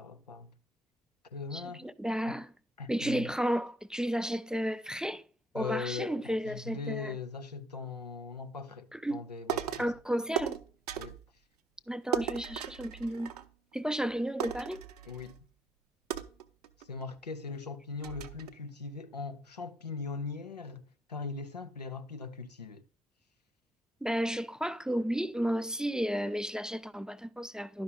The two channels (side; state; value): both; normal; correlation 0.71